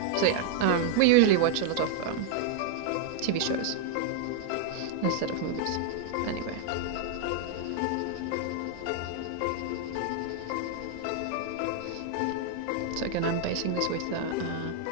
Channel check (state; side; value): different; both; correlation 0.00